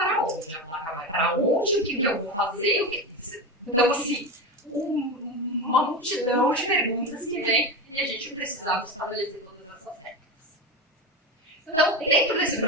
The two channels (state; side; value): normal; both; correlation 0.20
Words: onde? A placa vai para onde? O que eu vou fazer? Então assim, uma multidão de perguntas que vem e a gente precisava estabelecer todas essas regras. Então, dentro desse